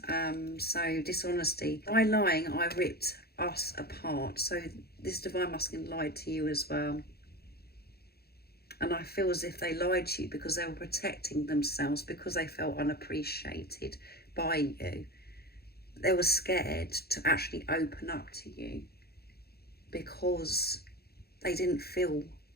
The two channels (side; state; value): right; late; 0.46 ms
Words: So dishonesty, by lying I ripped us apart. So this Divine Masculine lied to you as well, and I feel as if they lied to you because they were protecting themselves, because they felt unappreciated by you. they were scared to actually open up to you because they didn't feel